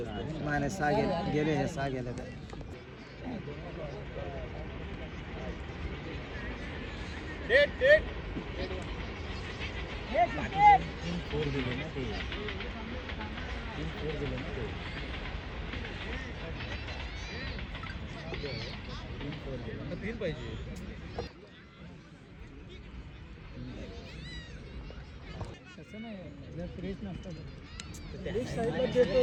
नाही 6 गेले हे 6 गेले तर तीन पाहिजे.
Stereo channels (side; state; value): both; identical; correlation 1.00